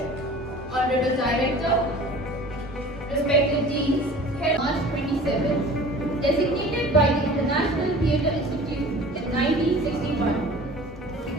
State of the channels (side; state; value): both; normal; correlation 0.43